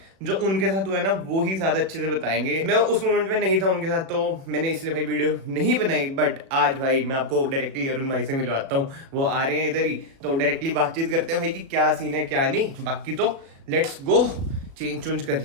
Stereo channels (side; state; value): left; late; 37 ms